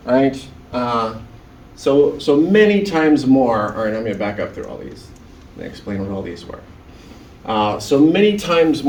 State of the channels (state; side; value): identical; both; correlation 1.00